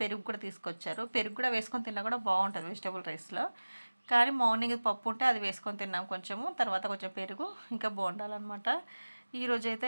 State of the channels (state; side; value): inverted; both; correlation -1.00